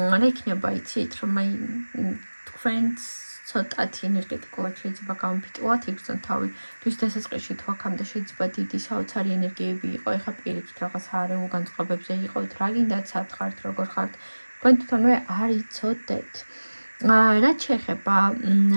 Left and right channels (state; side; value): inverted; both; correlation -1.00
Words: იქნება, იცით, რომ აი თქვენს ცოტათი ენერგეტიკულად შეიძლება გამოფიტულად იგრძნოთ თავი. თვის დასაწყისში თუ აქამდე შეიძლება დიდი საოცარი ენერგიები იყო, ეხლა პირიქით რაღაც არეულ განწყობებზე იყოთ, რა გინდათ, სად ხართ, როგორ ხართ, თქვენ თვითონვე არ იცოდეთ. რაც შეეხება